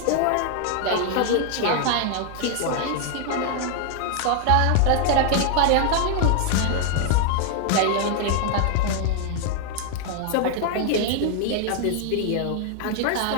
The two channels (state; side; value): different; both; correlation 0.00